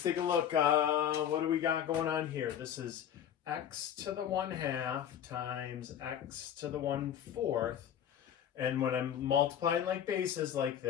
take a look. What do we got going on here? This is x to the 1/2 times x to the 1/4. And when I'm multiplying like bases like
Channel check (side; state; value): right; quieter; 9.6 dB